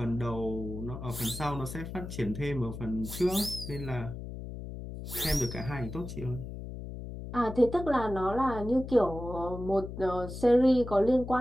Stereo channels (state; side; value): noise; left; hum, 9 dB below the sound